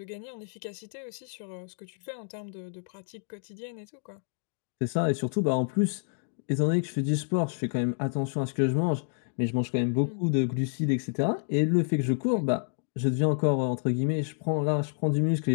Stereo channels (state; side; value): silent; right; digital silence